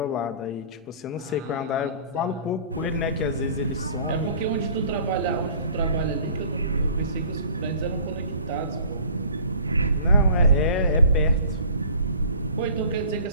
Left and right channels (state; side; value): inverted; both; correlation -0.48